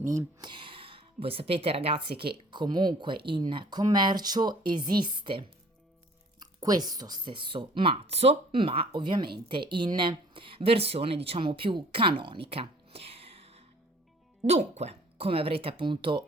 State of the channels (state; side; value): normal; both; correlation 0.53